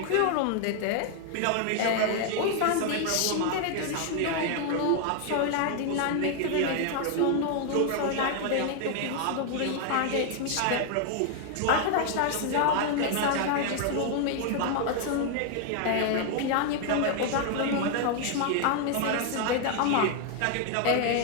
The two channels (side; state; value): both; different; correlation 0.00